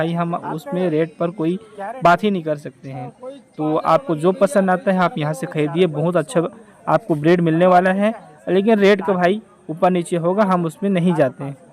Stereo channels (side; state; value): both; identical; correlation 1.00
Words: हम उसमें रेट पर कोई बात ही नहीं कर सकते हैं। तो आपको जो पसंद आता है आप यहाँ से खरीदिए, बहुत अच्छा आपको ब्रीड मिलने वाला है। लेकिन रेट का भाई ऊपर नीचे होगा, हम उसमें नहीं जाते हैं।